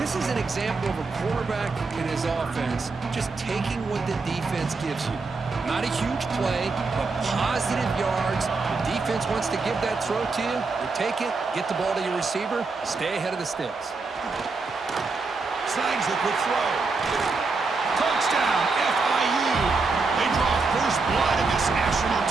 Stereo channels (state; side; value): quieter; left; 4.1 dB